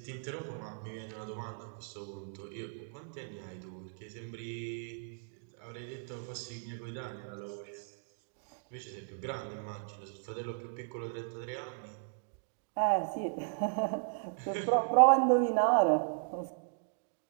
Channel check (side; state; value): left; silent; digital silence